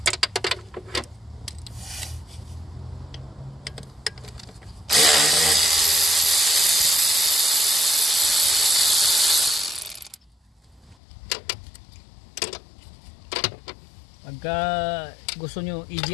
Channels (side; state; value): right; drops out; at 11.0 s